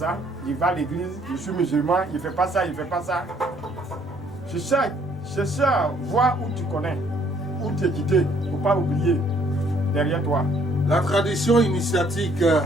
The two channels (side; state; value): both; normal; correlation 0.64